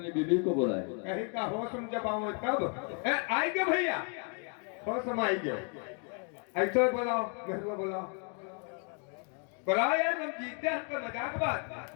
बीबी को बुलाए। कहीं का होश में जब आऊँ तब आएंगे भैया, होश में आएंगे। ऐसा बोलाओ मेहरुआ बोलाओ, बुलाओ यार हम जीते हैं। हमको मजाक बात।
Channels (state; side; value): quieter; right; 39.5 dB